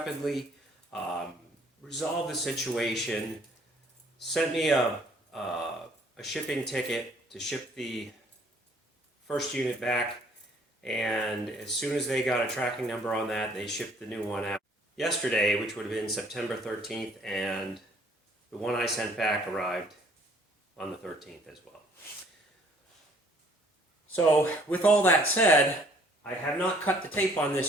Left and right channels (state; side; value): normal; both; correlation 0.60